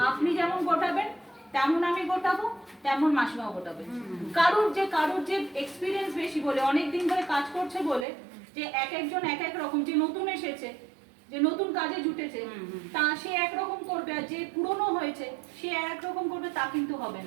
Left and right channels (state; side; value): drops out; left; at 8.1 s